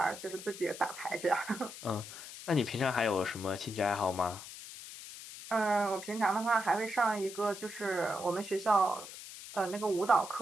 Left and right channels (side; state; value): left; noise; hiss, 12 dB below the sound